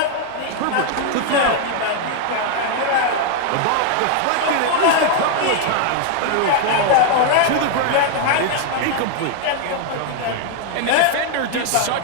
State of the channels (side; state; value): both; different; correlation 0.00